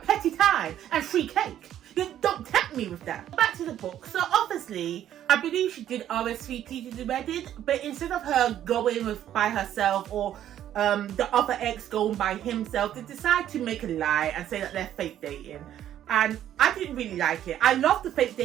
time and free cake. You don't tempt me with that. Back to the book. So obviously, I believe she did RSVP to the wedding. But instead of her going by herself or the other ex going by himself, they decide to make a lie and say that they're fake dating. And I didn't really like it. I love the fake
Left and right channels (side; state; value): left; quieter; 11.2 dB